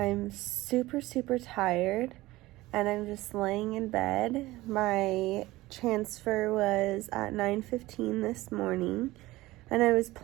super tired and I'm just laying in bed. My transfer was at 9:15 this morning and I was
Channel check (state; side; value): quieter; left; 18.5 dB